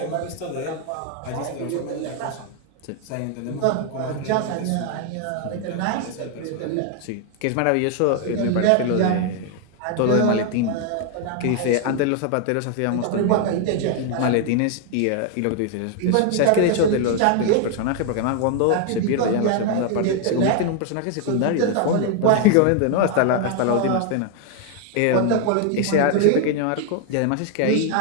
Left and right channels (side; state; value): both; different; correlation 0.00